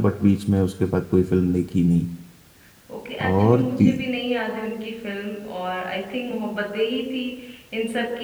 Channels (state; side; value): identical; both; correlation 1.00